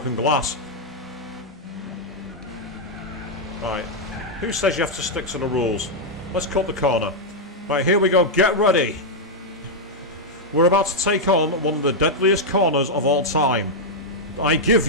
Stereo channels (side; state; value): both; normal; correlation -0.02